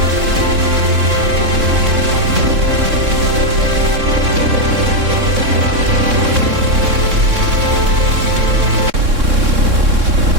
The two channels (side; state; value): left; late; 3.6 ms